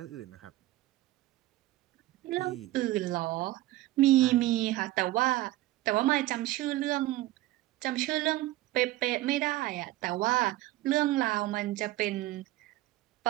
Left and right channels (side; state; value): left; quieter; 17.0 dB